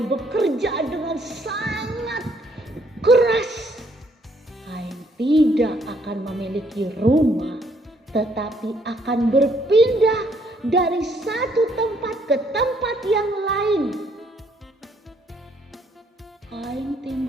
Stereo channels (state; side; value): normal; both; correlation 0.68